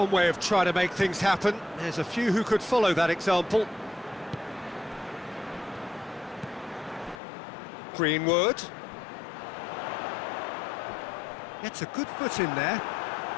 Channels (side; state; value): right; drops out; at 7.2 s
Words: way of trying to make things happen. There's a few who could follow that example. Greenwood. Gets a good foot in there.